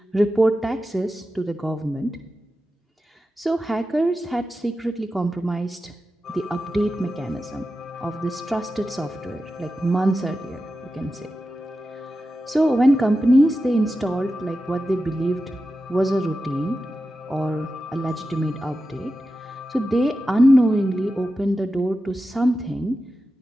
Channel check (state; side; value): normal; both; correlation 0.92